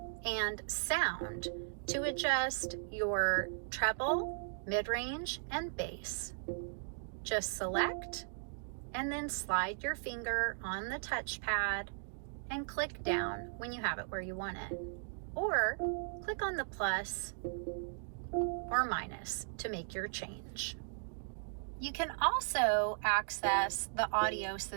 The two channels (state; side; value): silent; left; digital silence